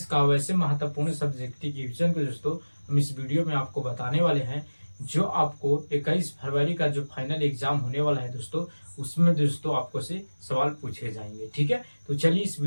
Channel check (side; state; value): both; inverted; correlation -1.00